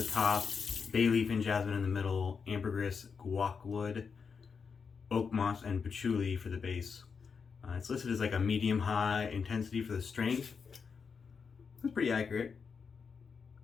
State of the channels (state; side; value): quieter; right; 5.7 dB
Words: top, bay leaf and jasmine in the middle, ambergris, guacwood, oak moss, and patchouli for the base. It's listed as like a medium-high intensity for the strength. It's pretty accurate.